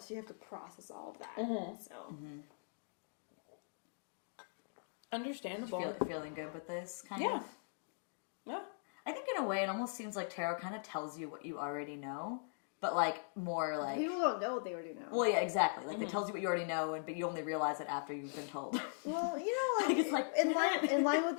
you have to process all of that. So Understandable. Feeling good with this, kind Yeah. of? Yeah. I think in a way it almost seems like tarot kind of tells you what you already know, but like more like... people don't know what they already know. Well, yeah, exactly. Like it tells you what you already know, but you only realize it after you've been told. Well, you know, like, It's like, in line with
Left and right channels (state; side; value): silent; right; digital silence